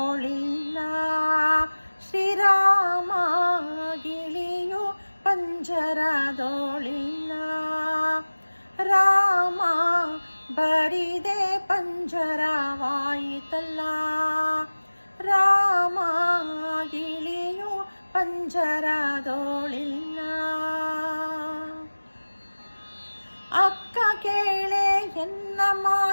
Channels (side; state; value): both; inverted; correlation -1.00